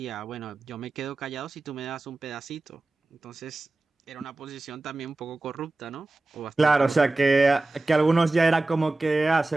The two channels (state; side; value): quieter; left; 3.0 dB